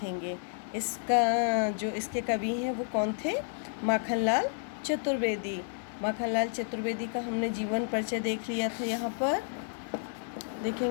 इसके कवि हैं वो कौन थे? माखनलाल चतुर्वेदी। माखनलाल चतुर्वेदी का हमने जीवन परिचय देख लिया था। यहाँ पर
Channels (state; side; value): silent; right; digital silence